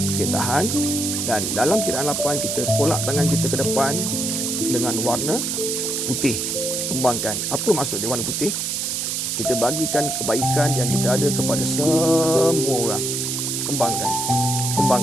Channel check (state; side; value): noise; right; hiss, 1 dB below the sound